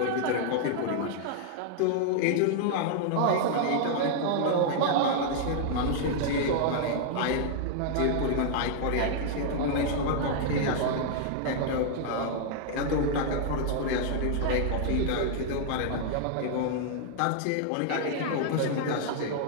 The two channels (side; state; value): both; different; correlation -0.01